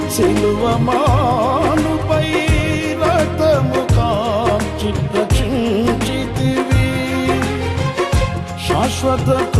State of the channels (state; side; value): identical; both; correlation 1.00